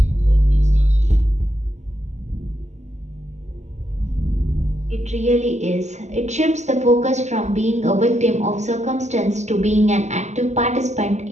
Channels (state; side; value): late; left; 0.33 ms